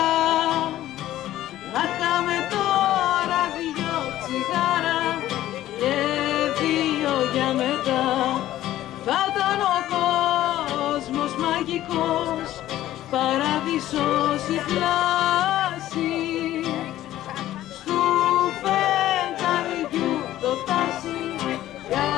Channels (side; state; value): right; quieter; 13.9 dB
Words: Να είχαμε τώρα 2 τσιγάρα και 2 για μετά. Θα ήταν ο κόσμος μαγικός, παράδεισος η πλάση, στου φεγγαριού το τάσι,